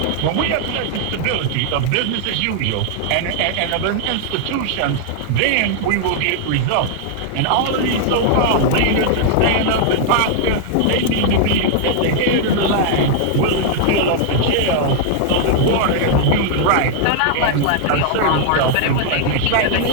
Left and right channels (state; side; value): different; both; correlation -0.01